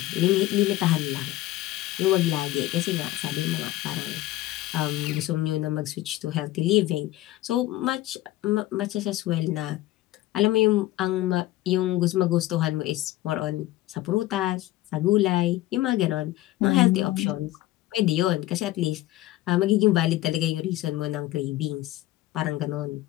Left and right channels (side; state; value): right; quieter; 16.1 dB